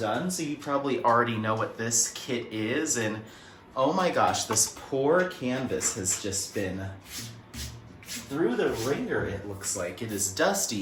So you probably already know what this kit is, and oh my gosh, this poor canvas has just been through the ringer. It looks like it is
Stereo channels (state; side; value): identical; both; correlation 1.00